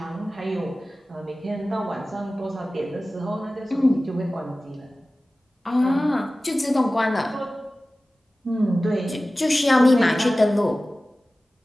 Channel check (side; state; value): both; normal; correlation 0.97